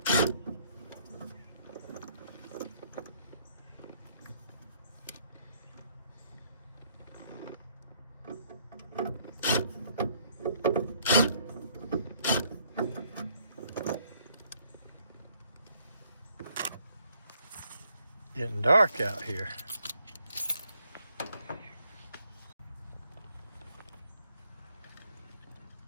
Getting dark out here.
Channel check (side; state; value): both; inverted; correlation -0.67